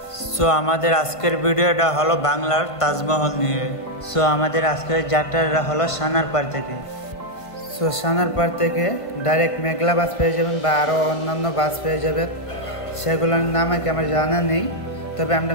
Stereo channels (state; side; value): late; right; 1.5 ms